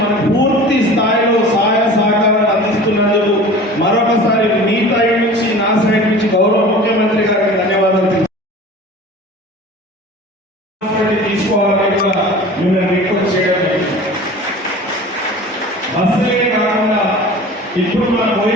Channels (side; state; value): both; normal; correlation 0.40